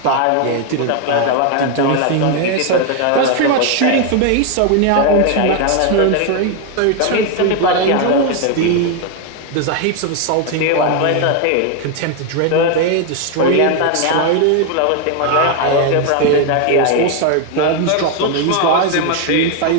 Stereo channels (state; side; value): different; both; correlation 0.01